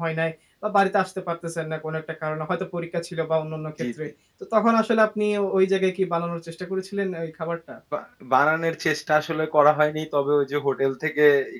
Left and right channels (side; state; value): both; identical; correlation 1.00